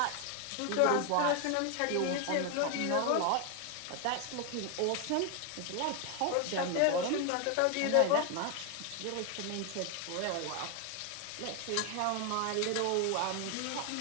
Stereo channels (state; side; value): different; both; correlation 0.01